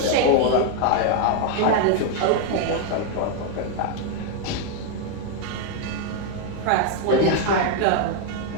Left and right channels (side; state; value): both; different; correlation 0.00